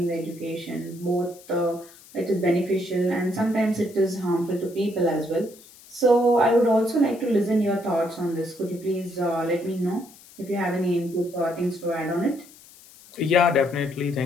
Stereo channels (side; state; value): left; noise; hiss, 23 dB below the sound